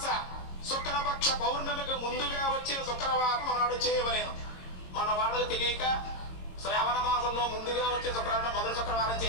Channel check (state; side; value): late; right; 22 ms